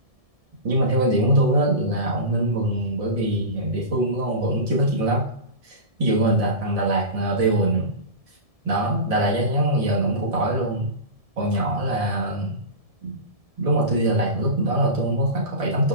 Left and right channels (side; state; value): left; late; 1.7 ms